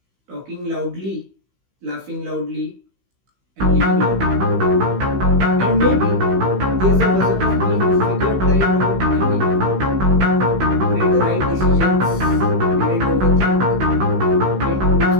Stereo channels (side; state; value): left; late; 16 ms